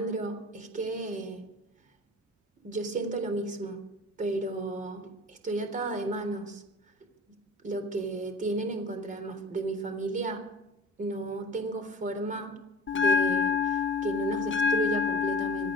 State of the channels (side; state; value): both; normal; correlation 0.41